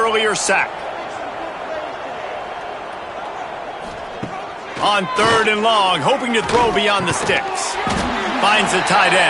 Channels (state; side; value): identical; both; correlation 1.00